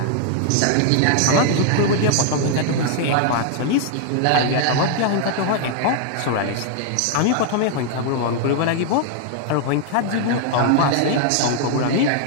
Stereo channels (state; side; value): different; both; correlation 0.00